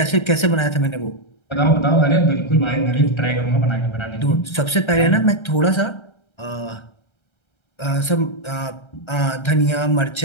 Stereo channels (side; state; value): right; late; 1.3 ms